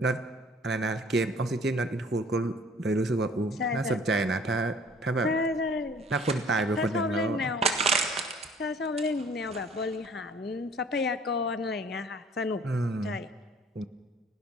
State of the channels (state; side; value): normal; both; correlation 0.53